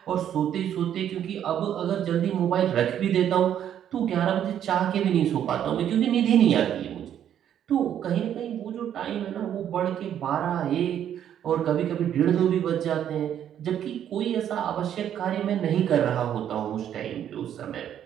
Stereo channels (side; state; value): left; quieter; 10.0 dB